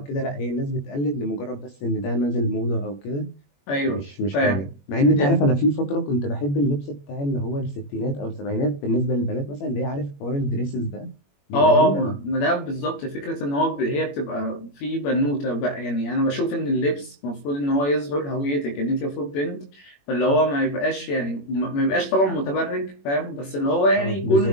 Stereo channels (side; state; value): right; late; 21 ms